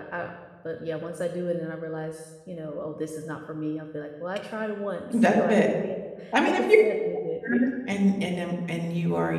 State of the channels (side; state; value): both; identical; correlation 1.00